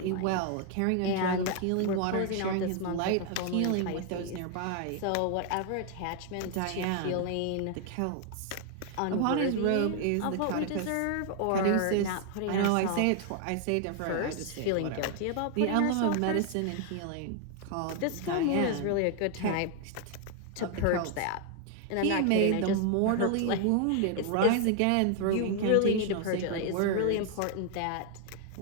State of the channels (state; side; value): different; both; correlation 0.00